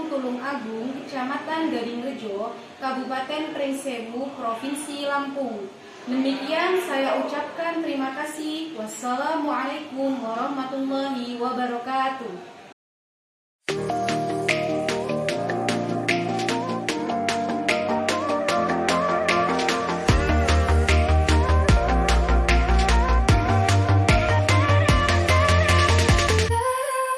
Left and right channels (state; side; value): identical; both; correlation 1.00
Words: Tulung Agung, Kecamatan Gadingrejo, Kabupaten Pringsewu, Provinsi Lampung. Demikian saya ucapkan terima kasih. Wassalamualaikum warahmatullahi wabarakatuh.